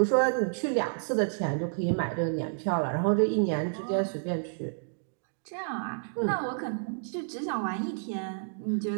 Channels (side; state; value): left; silent; digital silence